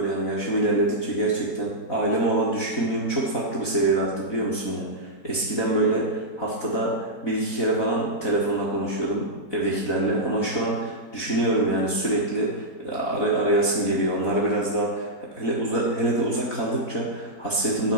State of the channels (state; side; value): late; right; 4.0 ms